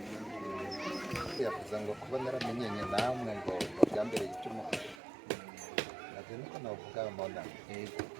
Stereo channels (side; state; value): left; drops out; at 5.0 s